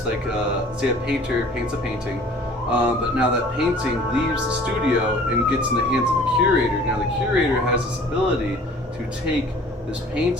like say a painter paints a painting, but now that painting leaves the studio and gets in the hands of the curator. Now the curator has this ability to take this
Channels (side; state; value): both; normal; correlation 0.50